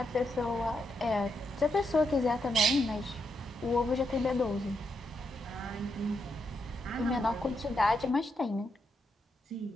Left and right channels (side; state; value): both; normal; correlation 0.81